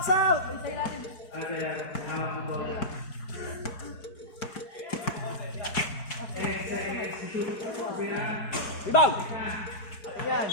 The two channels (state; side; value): late; right; 5.0 ms